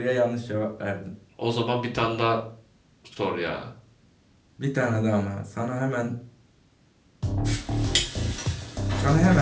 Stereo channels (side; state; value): both; identical; correlation 1.00